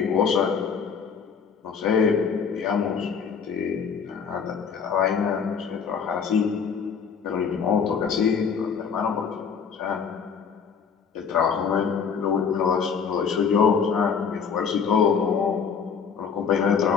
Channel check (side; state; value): right; quieter; 6.4 dB